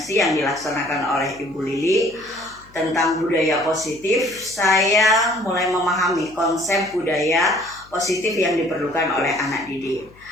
yang dilaksanakan oleh Ibu Lili tentang budaya positif, saya mulai memahami konsep budaya positif yang diperlukan oleh anak didik.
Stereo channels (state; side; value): noise; left; hum, 26 dB below the sound